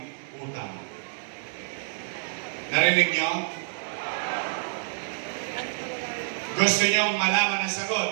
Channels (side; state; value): left; silent; digital silence